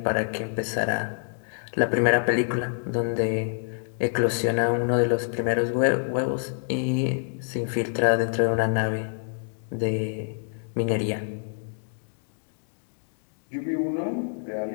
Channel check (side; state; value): right; silent; digital silence